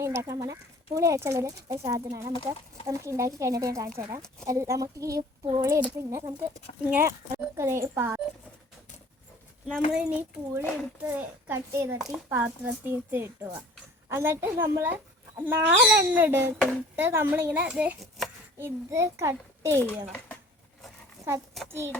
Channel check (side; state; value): both; normal; correlation 0.50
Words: ഉണ്ടാക്കാൻ പോകുന്ന പുളി വെച്ചുള്ളൊരു സാധനമാണ്. നമുക്ക് ഉണ്ടാക്കി കഴിഞ്ഞിട്ട് ഞാൻ കാണിച്ചു തരാം. നമുക്ക് ഈ പുളി എടുത്ത് നമുക്ക് ഇങ്ങനെ നമ്മളിനി പുളി എടുത്ത് കട്ട് ചെയ്തിട്ട് ഈ പാത്രത്തിൽ ഇട്ടുക. എന്നിട്ട് നമ്മൾ 4 എണ്ണം എടുത്തിട്ട് നമ്മളിങ്ങനെ ഇത് കട്ട് ചെയ്യണം. കത്തി